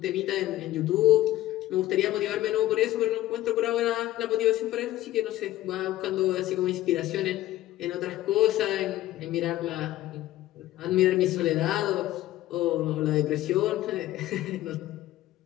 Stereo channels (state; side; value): quieter; right; 15.0 dB